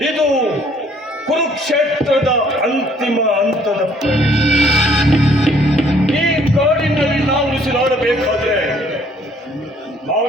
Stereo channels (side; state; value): both; normal; correlation 0.61